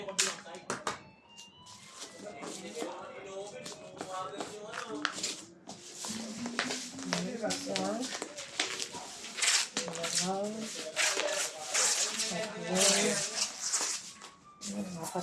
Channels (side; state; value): both; identical; correlation 1.00